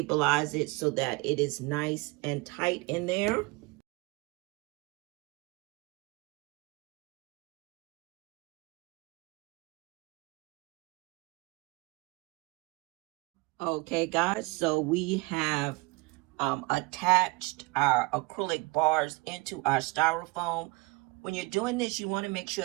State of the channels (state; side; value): quieter; left; 25.3 dB